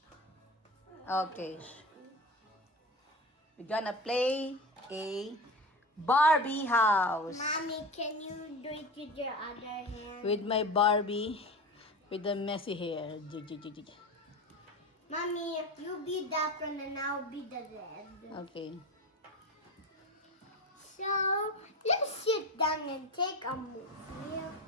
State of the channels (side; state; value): both; normal; correlation 0.28